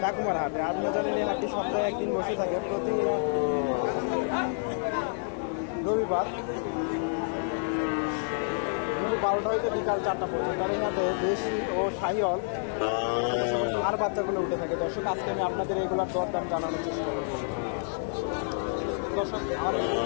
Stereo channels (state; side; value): silent; right; 59 dB below the other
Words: ডাকুমার হাটে। আপনারা জানেন এই হাটটি সপ্তাহে একদিন বসে থাকে, প্রতি রবিবার 12টা হইতে বিকাল 4টা পর্যন্ত। আর এই হাটে দেশি ও শাহিওয়াল আর বাচ্চাগুলো উঠে থাকে। দর্শক, আজকে আমি আপনাদের এগুলোর দরদাম জানানোর চেষ্টা করব। দর্শক, আমার